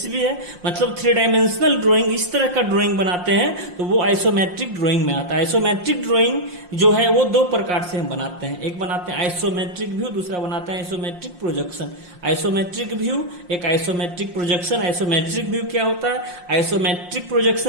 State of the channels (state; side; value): late; left; 5.6 ms